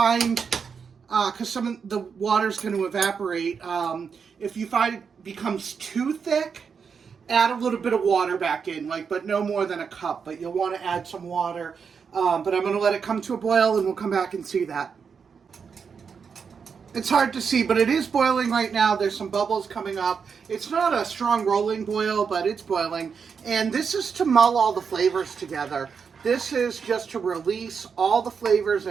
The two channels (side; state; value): left; quieter; 6.1 dB